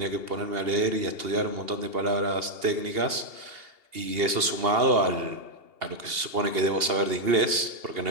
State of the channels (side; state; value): left; late; 2.8 ms